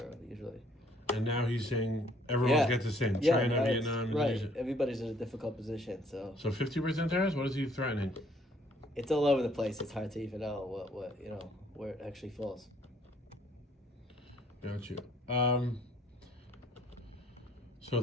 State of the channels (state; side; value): normal; both; correlation 0.62